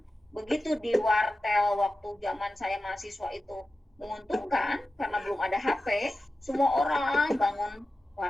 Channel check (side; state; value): both; normal; correlation 0.94